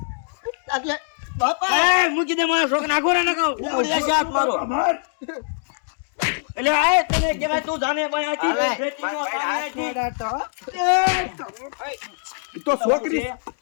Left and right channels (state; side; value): silent; right; digital silence